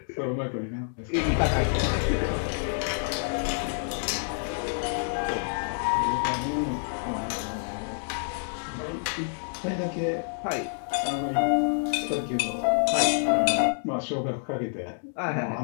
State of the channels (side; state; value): right; silent; digital silence